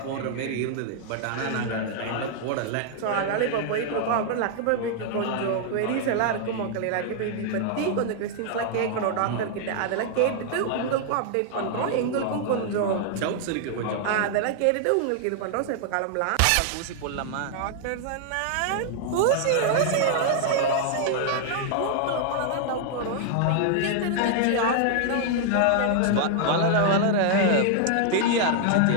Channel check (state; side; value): different; both; correlation -0.01